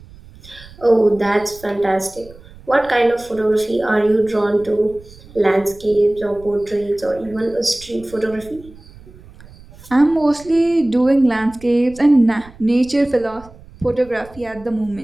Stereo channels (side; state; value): right; noise; rumble, 21 dB below the sound